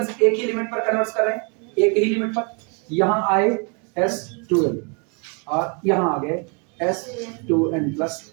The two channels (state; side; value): quieter; left; 34.4 dB